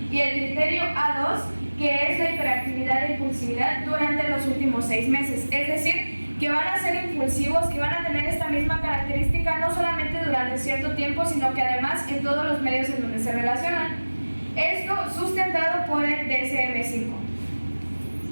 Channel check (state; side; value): inverted; both; correlation -1.00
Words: y el criterio A2, que es la hiperactividad e impulsividad durante los últimos 6 meses. Es decir, que van a ser impulsivos, que van a tener esta misma característica no solamente durante cierto tiempo, sino que además en todos los medios en donde se relacionan. Esto sustentado por el DSM-5.